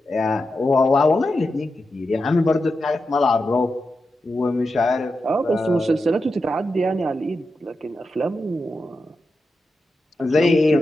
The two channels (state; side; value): normal; both; correlation 0.89